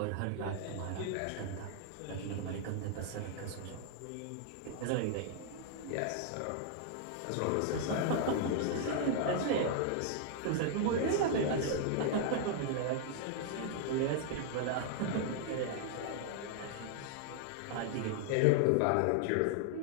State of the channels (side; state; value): both; different; correlation 0.00